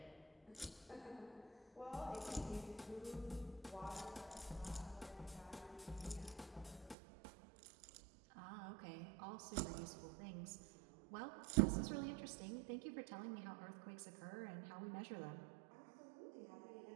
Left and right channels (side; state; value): left; drops out; at 7.0 s